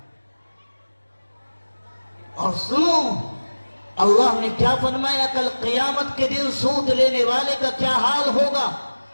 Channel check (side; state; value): both; inverted; correlation -1.00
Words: اور سنو اللہ نے کیا فرمایا کل قیامت کے دن سود لینے والے کا کیا حال ہوگا.